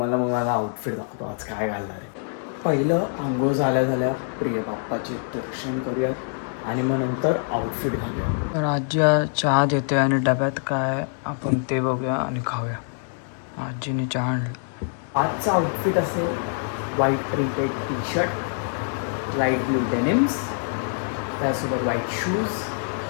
माझा आउटफिट दाखवतो आज काय घालणार आहे. पहिलं आंघोळ झाल्या प्रिय बाप्पाचे दर्शन करूयात आणि मग नंतर आउटफिट घालूया. तर आजी चहा देते आणि डब्यात काय आपण ते बघूया आणि खाऊया. आजीने चहा आणलं. आजचा आउटफिट असेल white printed T shirt, light blue denims, त्यासोबत व्हाईट शूज,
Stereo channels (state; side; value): silent; right; digital silence